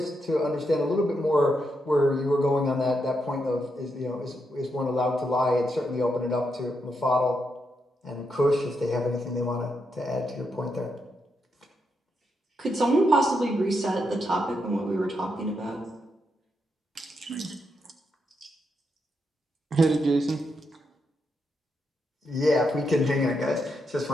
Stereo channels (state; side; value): normal; both; correlation 0.82